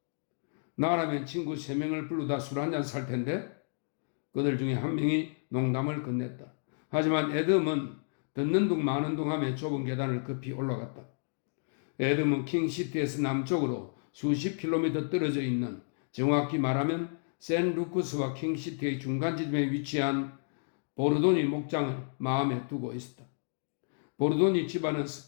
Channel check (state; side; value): silent; right; digital silence